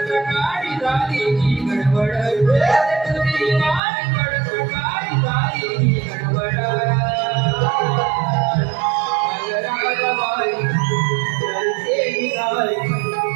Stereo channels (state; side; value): drops out; left; at 3.8 s